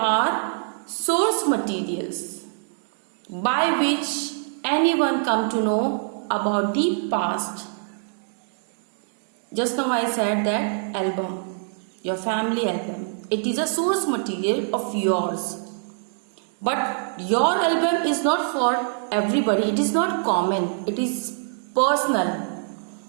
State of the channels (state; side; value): silent; left; digital silence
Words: source materials by which anyone come to know about the past. Just now I said that album, your family album, it is a source material of yours. But your album is not for everybody, it is not common, it is personal.